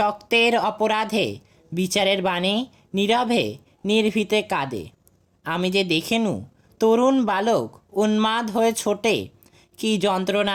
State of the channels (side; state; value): both; identical; correlation 1.00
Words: অপরাধে বিচারের বাণী নীরবে নির্ভীতে কাঁদে। আমি যে দেখেনু তরুণ বালক উন্মাদ হয়ে ছোটে, কি